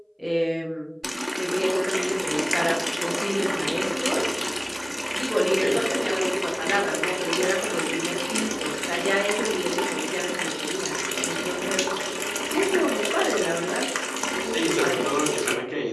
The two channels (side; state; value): both; identical; correlation 1.00